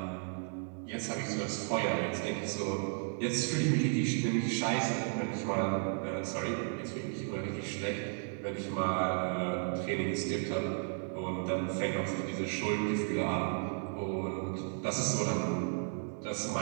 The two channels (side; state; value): left; silent; 55 dB below the other